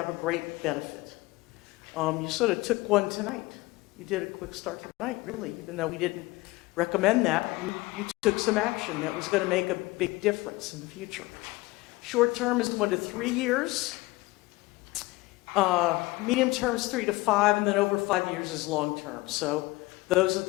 a great benefit. You sort of took one tonight. You did a quick start tonight, really, even though we didn't recommend that. You took some action that was going to make a big difference in the future. Short term is 1 to 3 years. Medium term is 3 to 5, and then over 5 years is long term. So those are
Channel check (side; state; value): right; quieter; 21.4 dB